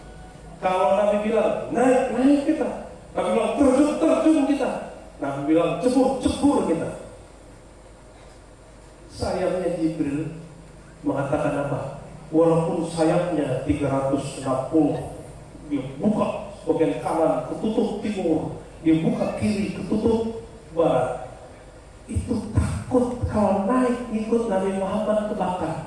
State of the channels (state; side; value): identical; both; correlation 1.00